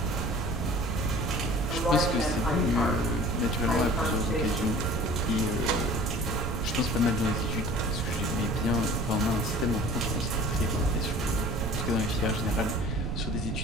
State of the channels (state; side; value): noise; right; rumble, 2 dB below the sound